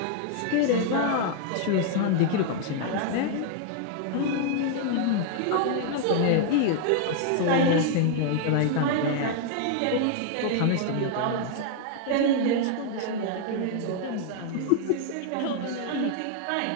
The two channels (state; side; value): different; both; correlation 0.00